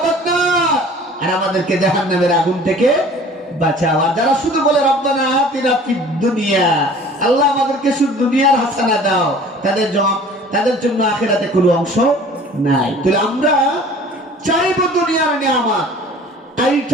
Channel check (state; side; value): normal; both; correlation 0.47